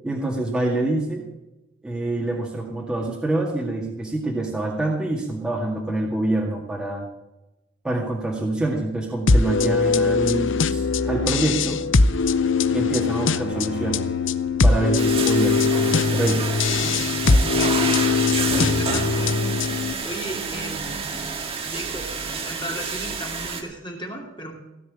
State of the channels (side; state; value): both; normal; correlation 0.51